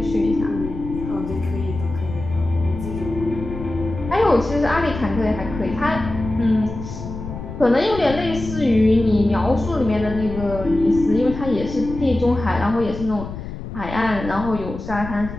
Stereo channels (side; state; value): left; noise; rumble, 9 dB below the sound